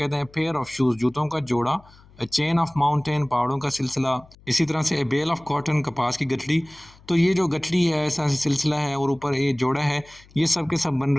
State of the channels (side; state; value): left; noise; hum, 26 dB below the sound